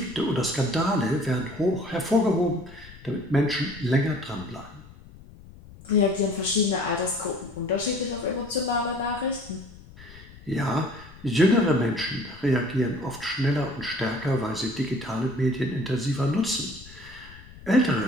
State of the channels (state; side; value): noise; left; rumble, 19 dB below the sound